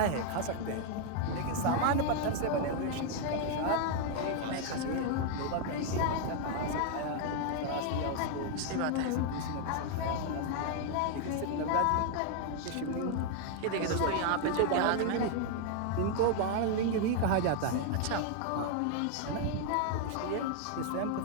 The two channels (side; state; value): both; different; correlation 0.00